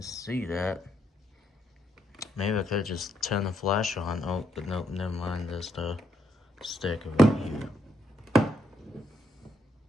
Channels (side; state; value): both; normal; correlation 0.76